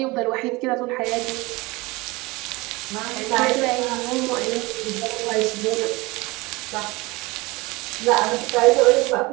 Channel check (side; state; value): left; quieter; 23.1 dB